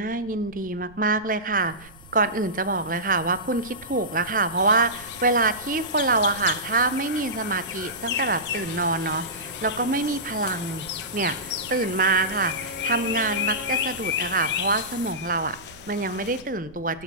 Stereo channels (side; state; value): right; noise; rumble, 23 dB below the sound